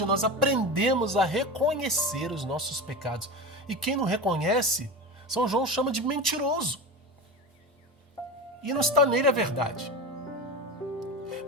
nós aprendemos a reconhecer os nossos pecados. E quem não reconhece, São João chama de mentiroso. E não está nele a verdade.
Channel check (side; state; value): both; normal; correlation 0.25